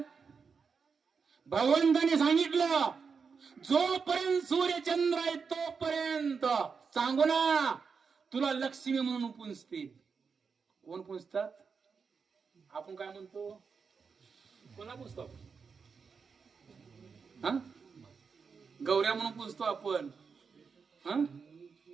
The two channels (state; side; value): quieter; left; 5.5 dB